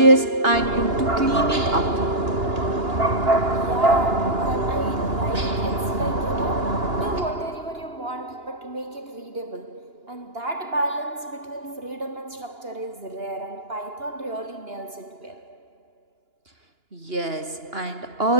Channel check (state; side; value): late; left; 2.9 ms